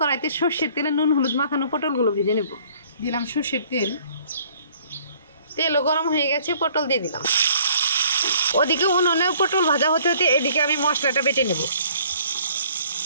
সর্ষের তেলে নুন হলুদ মাখানো পটলগুলো ভেজে নেব। দিলাম সর্ষের তেল। তেলও গরম হয়ে গেছে, পটল দিয়ে দিলাম। ওদিকে উনুনে পটল ভাজা হতে হতে এদিকে আমি মশলাটা বেটে নেব।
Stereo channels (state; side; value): inverted; both; correlation -0.57